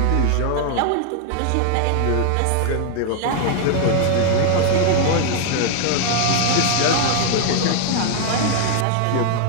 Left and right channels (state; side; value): different; both; correlation 0.00